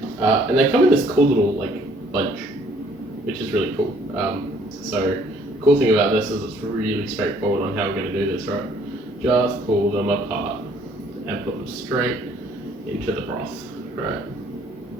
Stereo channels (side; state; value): both; normal; correlation 0.61